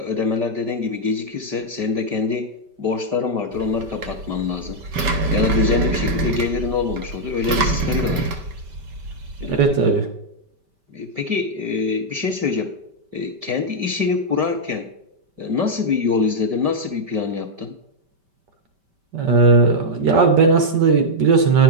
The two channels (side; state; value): left; late; 5.1 ms